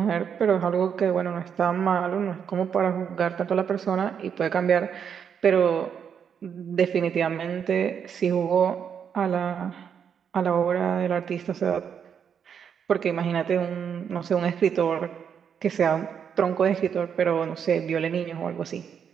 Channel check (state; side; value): quieter; left; 7.6 dB